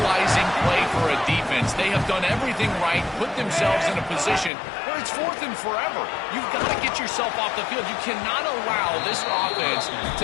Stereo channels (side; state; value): right; drops out; at 4.5 s